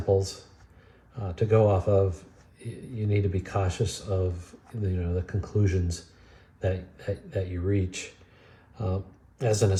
to go off of, you need to be cautious of the conclusions that you reach. As an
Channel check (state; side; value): identical; both; correlation 1.00